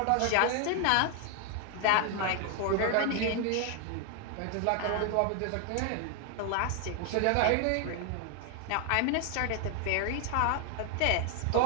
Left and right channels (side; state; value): both; different; correlation 0.00